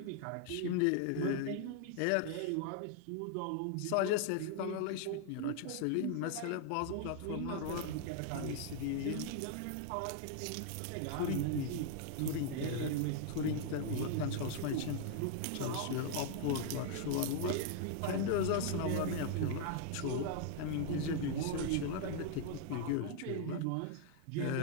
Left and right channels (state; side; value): different; both; correlation 0.00